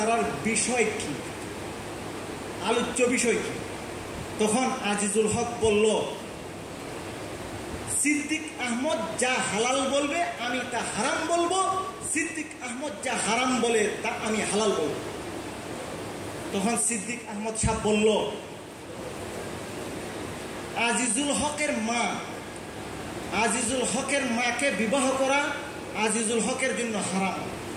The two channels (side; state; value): both; identical; correlation 1.00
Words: বিষয় কি, আলোচ্য বিষয় কি? তখন আজিজুল হক বলল, সিদ্দিক আহমদ যা হালাল বলবে আমি তা হারাম বলবো, সিদ্দিক আহমদ যা হারাম বলে তা আমি হালাল বলবো। তখন সিদ্দিক আহমদ সাহেব বলল, আজিজুল হকের মা, আজিজুল হকের মাকে বিবাহ করা আজিজুল হকের জন্য হারাম,